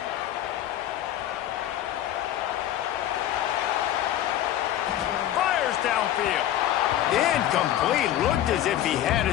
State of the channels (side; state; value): right; quieter; 12.2 dB